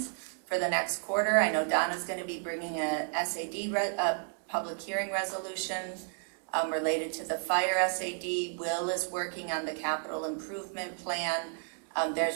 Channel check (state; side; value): silent; left; 56 dB below the other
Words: for the next quarter. I know Donna's going to be bringing a SAD, public hearing resolution related to the fire SAD. Will is working on the capital improvement plan.